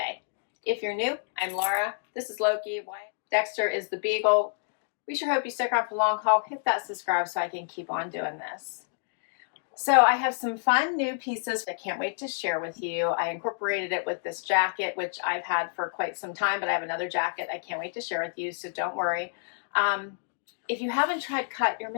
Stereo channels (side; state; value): right; silent; digital silence